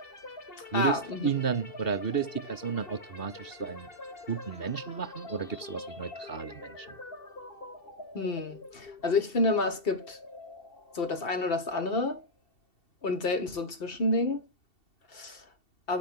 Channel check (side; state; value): right; late; 2.7 ms